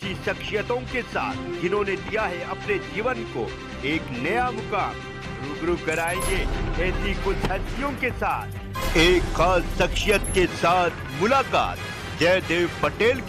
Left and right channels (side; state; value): both; identical; correlation 1.00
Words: शख्सियतों के साथ जिन्होंने दिया है अपने जीवन को एक नया मुकाम। रूबरू कराएंगे ऐसी कुछ हस्तियों के साथ एक खास शख्सियत के साथ मुलाकात जयदेव पटेल